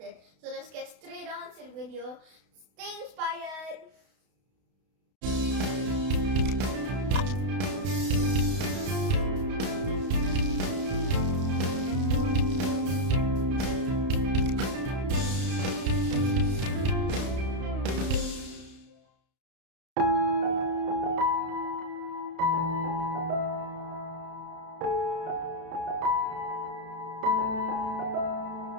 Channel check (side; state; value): left; late; 32 ms